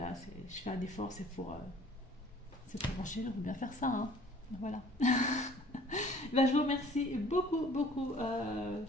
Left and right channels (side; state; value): both; normal; correlation 0.52